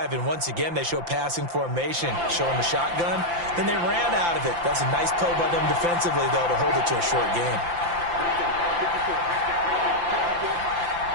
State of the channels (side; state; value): left; late; 5.8 ms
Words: and once again they show passing formation, showing the shotgun. Then they ran out of it. That's a nice play by them defensively, though, to hold it to a short game.